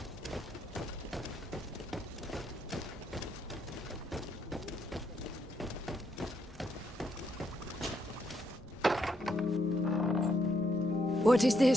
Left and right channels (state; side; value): normal; both; correlation 0.76